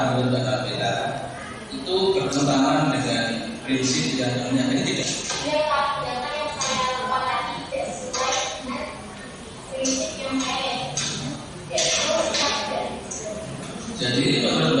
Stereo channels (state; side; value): identical; both; correlation 1.00